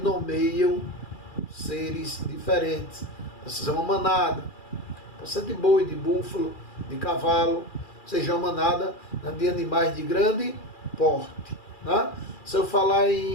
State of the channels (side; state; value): right; late; 2.4 ms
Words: seres diferentes. Seja uma manada, pode ser de boi, de búfalo, de cavalo, seja uma manada, né, de animais de grande porte. Né? Se eu falar